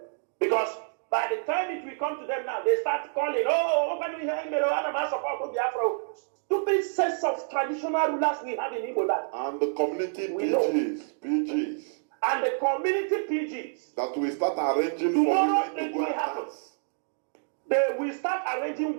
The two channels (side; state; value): left; silent; digital silence